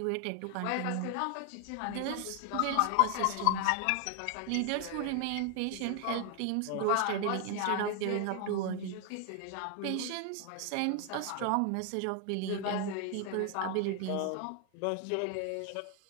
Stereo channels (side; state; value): both; different; correlation 0.00